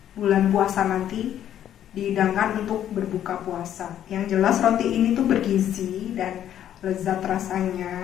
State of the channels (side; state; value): right; quieter; 10.7 dB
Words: bulan puasa nanti, dihidangkan untuk berbuka puasa. Yang jelas roti ini tuh bergizi dan lezat